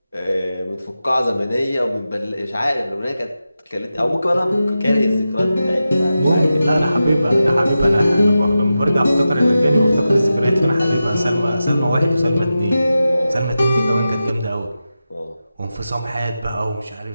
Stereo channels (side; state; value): both; inverted; correlation -0.92